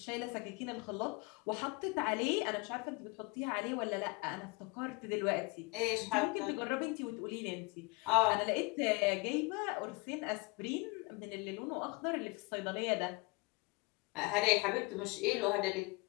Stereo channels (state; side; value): quieter; right; 26.7 dB